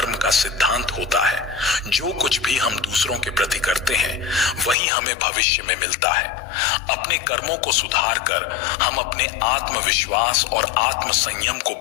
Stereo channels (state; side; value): drops out; right; at 4.8 s